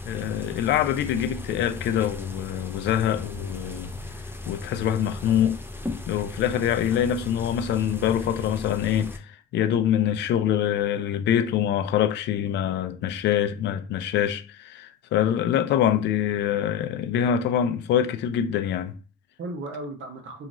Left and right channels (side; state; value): right; quieter; 9.0 dB